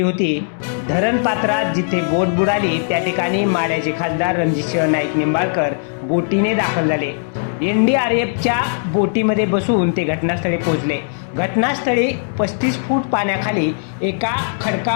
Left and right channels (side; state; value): right; silent; 66 dB below the other